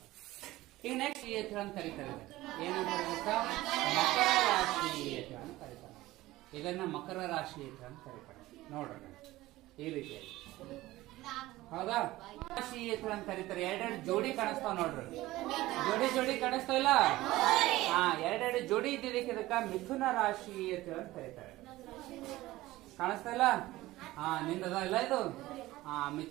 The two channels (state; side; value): quieter; left; 17.5 dB